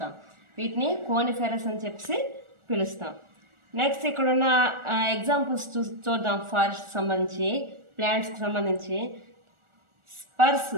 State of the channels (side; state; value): left; late; 1.4 ms